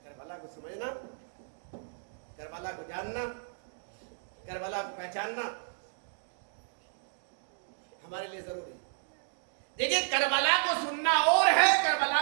کربلا کو سمجھنا, کربلا کو جاننا, کربلا کو پہچاننا ہمارے لیے ضروری ہے. دیکھیے کربلا کو سننا اور ہے, کربلا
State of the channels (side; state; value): left; silent; digital silence